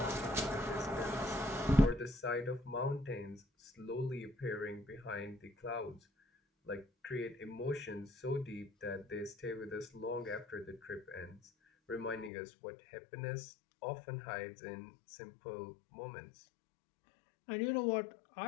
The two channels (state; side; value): drops out; right; at 12.3 s